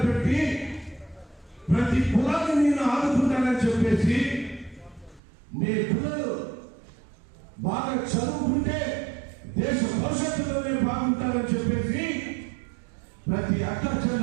పెట్టి ప్రతి కులాన్ని నేను ఆదుకుంటానని చెప్పేసి మీ పిల్లలు బాగా చదువుకుంటే దేశ భవిష్యత్తులోనే బాగుంటారని చెప్పేసి ప్రతి అక్క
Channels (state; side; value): drops out; left; at 5.2 s